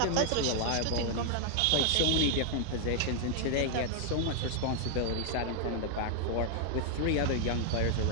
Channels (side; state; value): both; different; correlation 0.00